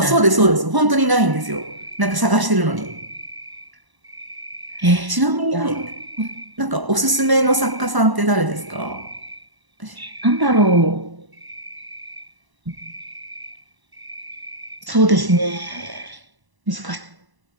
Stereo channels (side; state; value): left; late; 1.0 ms